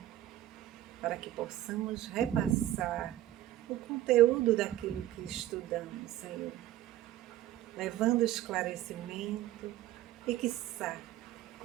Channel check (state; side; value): quieter; left; 13.7 dB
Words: para que possamos repassar o conteúdo daquilo que estudamos, Senhor, levando esclarecimento e, quiçá,